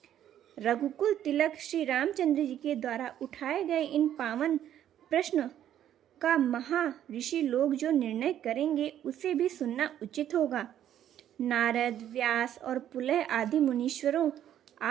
रघुकुल तिलक श्री रामचंद्र जी के द्वारा उठाए गए इन पावन प्रश्न का महा ऋषि लोग जो निर्णय करेंगे, उसे भी सुनना उचित होगा। नारद, व्यास और पुलह आदि मुनीश्वरों,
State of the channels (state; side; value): quieter; left; 10.9 dB